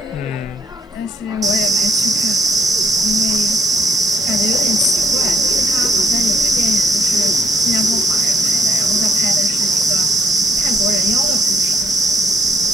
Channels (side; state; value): both; normal; correlation 0.70